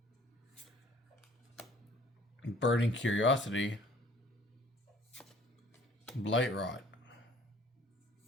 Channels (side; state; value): both; normal; correlation 0.54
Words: Burning Curiosity, Blight Rot,